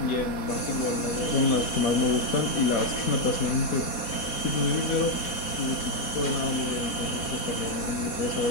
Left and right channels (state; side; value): late; right; 4.1 ms